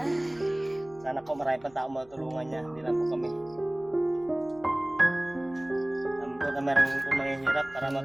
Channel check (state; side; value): noise; left; hum, 29 dB below the sound